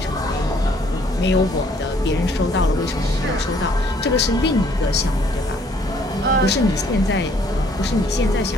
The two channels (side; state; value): both; normal; correlation 0.63